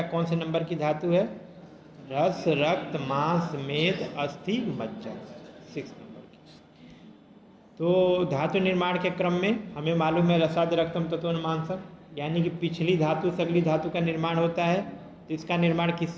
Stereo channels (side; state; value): both; identical; correlation 1.00